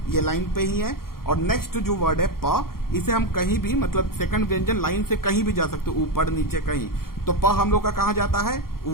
ये लाइन पे ही है। और नेक्स्ट जो वर्ड है प, इसे हम कहीं भी सेकंड व्यंजन लाइन से कहीं भी जा सकते, ऊपर नीचे कहीं। तो प हम लोग का कहाँ जाता है,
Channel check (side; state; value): right; late; 0.93 ms